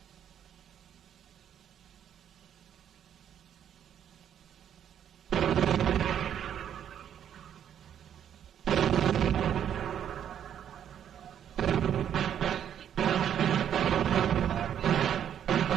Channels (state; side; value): quieter; left; 9.5 dB